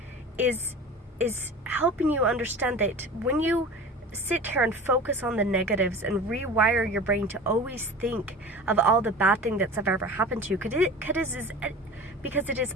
is helping you understand that when you sit here and focus on the negatives and rewire your brain to always think of all the bad thing that's ever happened to you, because it is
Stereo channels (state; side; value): normal; both; correlation 0.36